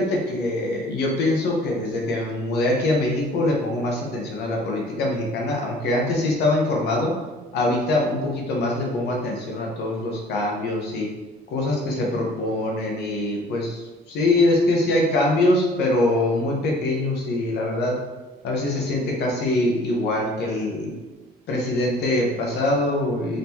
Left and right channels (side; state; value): both; normal; correlation 0.52